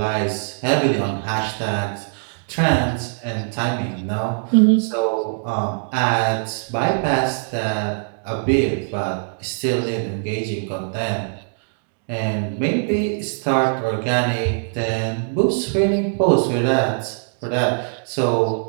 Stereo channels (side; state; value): left; silent; digital silence